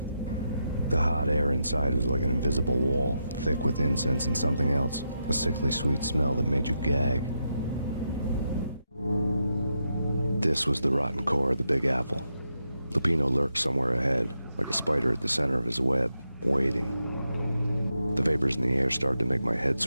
The hot air inside was like an invisible wall, thick with incense and something else, a sickly sweet smell that made you gag. This was the rotten core of the Big Apple. Lupino lurked somewhere ahead, like a spider at the center of his web, waiting. The vapors in the air started to make my head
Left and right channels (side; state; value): both; inverted; correlation -0.84